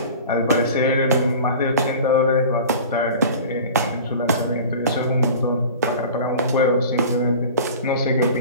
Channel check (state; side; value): inverted; both; correlation -0.39